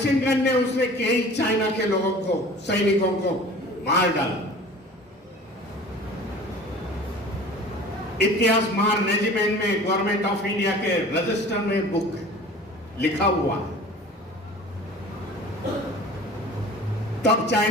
गन ने उसने कई चाइना के लोगों को, सैनिकों को मार डाला। इतिहास मार रेजिमेंट में गवर्नमेंट ऑफ इंडिया के रजिस्टर में बुक लिखा हुआ है। तब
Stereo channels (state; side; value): normal; both; correlation 0.43